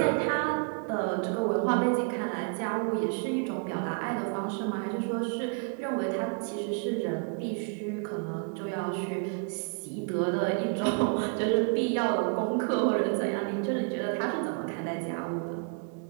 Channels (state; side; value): quieter; left; 38.7 dB